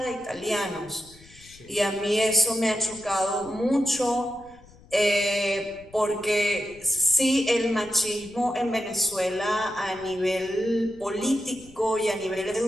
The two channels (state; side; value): noise; left; rumble, 24 dB below the sound